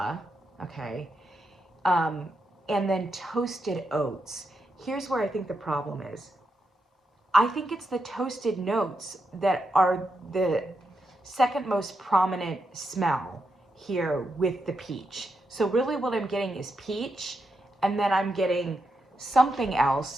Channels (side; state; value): both; normal; correlation 0.84